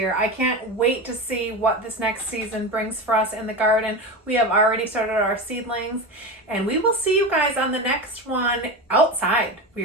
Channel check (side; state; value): both; normal; correlation 0.23